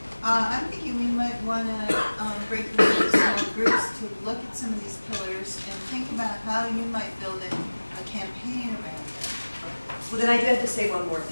I'm thinking we might want to break them into small groups to look at some of these pillars and think about how you might build a campaign around it. Well, then I do have to say one more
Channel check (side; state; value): both; inverted; correlation -1.00